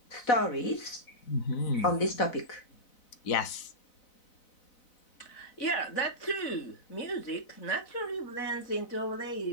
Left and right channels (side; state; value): right; late; 4.0 ms